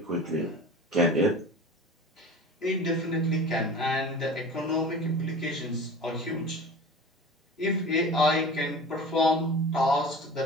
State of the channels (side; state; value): both; normal; correlation 0.37